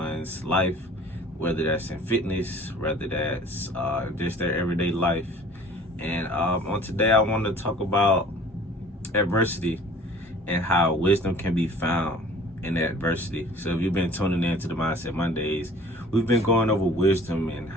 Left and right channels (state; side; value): normal; both; correlation 0.48